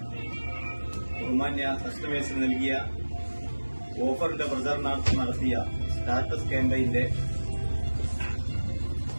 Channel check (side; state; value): both; inverted; correlation -1.00